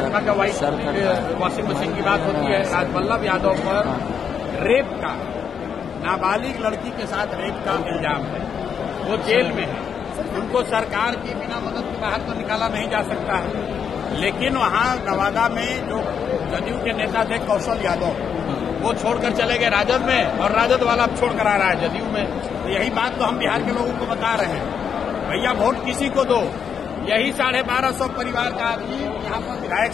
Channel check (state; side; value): quieter; right; 7.3 dB